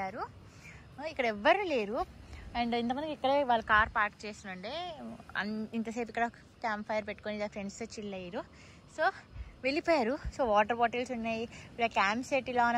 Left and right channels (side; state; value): both; identical; correlation 1.00